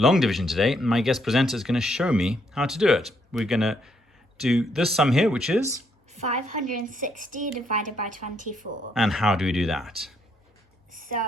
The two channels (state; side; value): normal; both; correlation 0.73